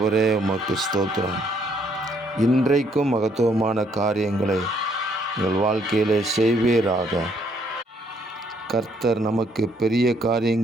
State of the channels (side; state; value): both; normal; correlation 0.68